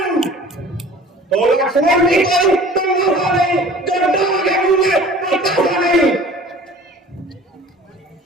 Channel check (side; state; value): both; normal; correlation 0.46